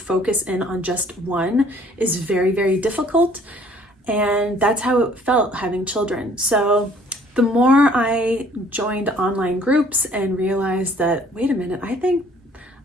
in on just one is very, very difficult. And that's how it felt having children. So the more I joined online groups and realized that, wait a minute, I think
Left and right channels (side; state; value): both; normal; correlation 0.58